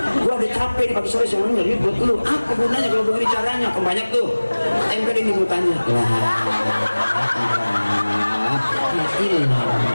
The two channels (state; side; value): inverted; both; correlation -1.00